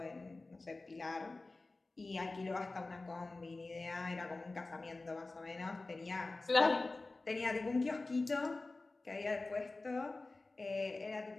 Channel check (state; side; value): quieter; right; 3.3 dB